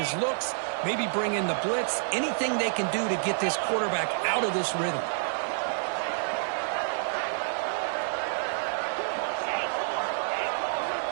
looks, maybe bring in the blitz, anything they can do to get this quarterback out of this rhythm.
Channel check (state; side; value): silent; left; digital silence